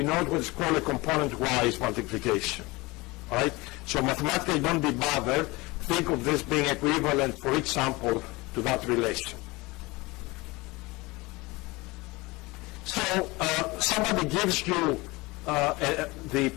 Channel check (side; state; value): right; quieter; 23.1 dB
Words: what is called a component-wise multiplication. All right? So mathematically, don't be bothered. Think of this being equivalent for each sample to that relation. So somebody gives you the